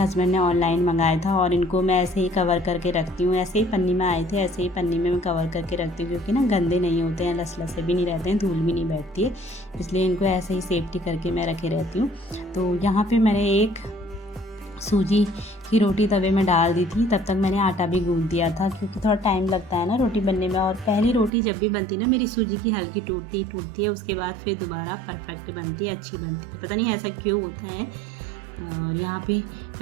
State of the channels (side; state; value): left; drops out; at 21.3 s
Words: ने ऑनलाइन मंगाया था और इनको मैं ऐसे ही कवर करके रखती हूँ। ऐसे ही पन्नी में आए थे, ऐसे ही पन्नी में मैं कवर करके रखती हूँ क्योंकि ना गंदे नहीं होते हैं, लसलसे भी नहीं रहते हैं, धूल भी नहीं बैठती है, इसलिए इनको ऐसे ही सेफ्टी करके मैं रखे रहती हूँ। तो यहाँ पे मैंने एक सूजी की रोटी तवे में डाल दी थी। तब तक मैंने आटा भी गूंथ दिया था क्योंकि थोड़ा टाइम लगता है ना रोटी बनने में। और पहली रोटी जब भी बनती ना मेरी सूजी की हल्की टूटती है, उसके बाद फिर दोबारा परफेक्ट बनती है, अच्छी बनती है, पता नहीं ऐसा क्यों होता है। और यहाँ पे